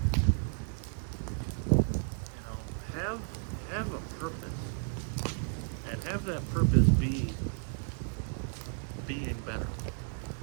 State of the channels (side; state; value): left; silent; 56 dB below the other